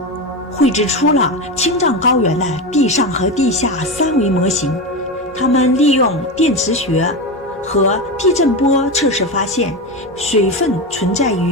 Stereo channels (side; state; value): both; normal; correlation 0.18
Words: 绘制出了青藏高原的地上和地下3维模型。他们利用电磁学和地震波测试发现，水分存在